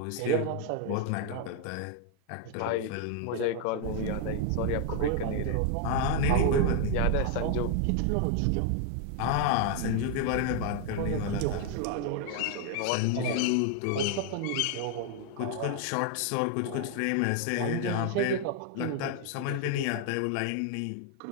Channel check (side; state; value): both; different; correlation 0.00